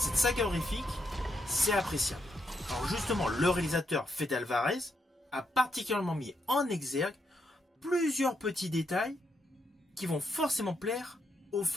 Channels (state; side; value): normal; both; correlation 0.79